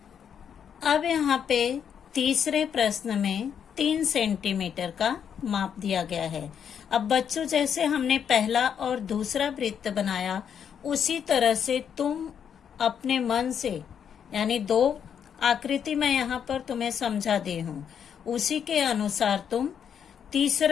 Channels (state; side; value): quieter; right; 8.0 dB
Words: अब यहाँ पे तीसरे प्रश्न में 3 सेंटीमीटर का माप दिया गया है। अब बच्चों, जैसे हमने पहला और दूसरा वृत्त बनाया, उसी तरह से तुम अपने मन से, यानी 2 आकृति मैं यहाँ पर तुम्हें समझा दी हूँ, उसी के अनुसार तुम